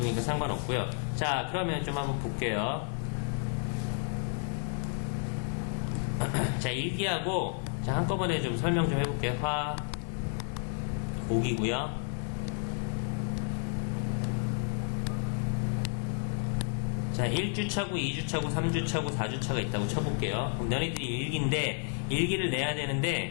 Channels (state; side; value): silent; right; 57 dB below the other